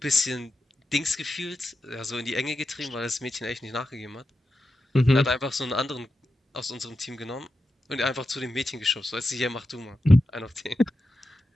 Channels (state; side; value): normal; both; correlation 0.90